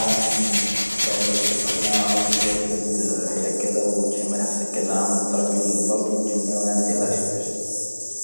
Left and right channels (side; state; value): both; inverted; correlation -1.00